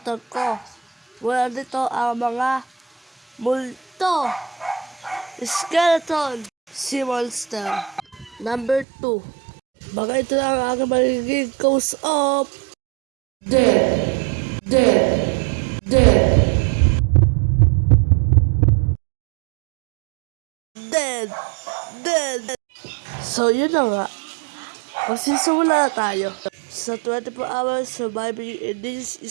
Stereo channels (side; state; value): left; drops out; at 8.8 s